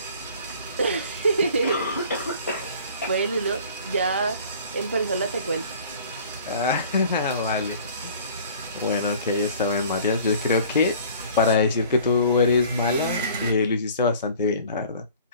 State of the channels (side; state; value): both; inverted; correlation -0.48